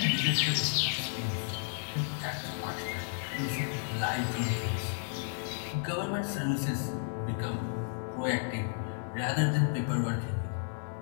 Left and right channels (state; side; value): silent; right; 56 dB below the other